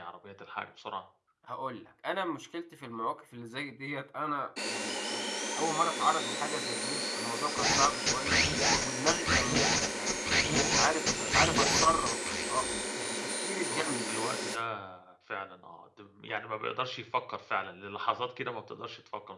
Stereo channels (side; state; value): both; identical; correlation 1.00